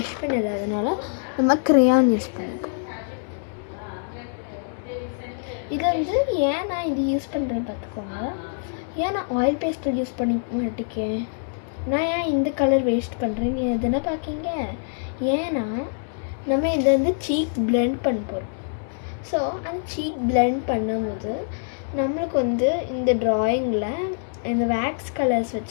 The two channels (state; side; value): silent; right; 59 dB below the other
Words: பென் இல்லாதனால நம்ம க்ரேயான் யூஸ் பண்ணிப்போம். இது வந்து ஏன் நான் இது யூஸ் பண்ணுறேன்னு பார்த்துக்கோங்க. ஏன் நான் ஆயில் பேஸ்டல் யூஸ் பண்ணி மாட்டிக்கேன், நான் ஏன் இந்த கலர் வேஸ்ட் பண்ணுறேன்னு எதுனா பார்க்கிங்க. ஏன்னா நம்ம இதை வந்து சீக் பிளெண்ட் பண்ண போகிறோம். ஸோ அந்த சீக் பிளெண்ட் பண்ணும்போது நம்மளுக்கு வந்து இந்த ட்ராயிங்கில் இந்த வேக்ஸ் கலர்ஸ்